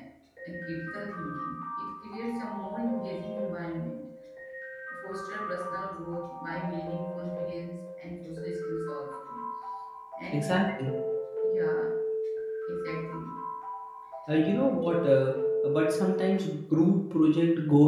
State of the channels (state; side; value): identical; both; correlation 1.00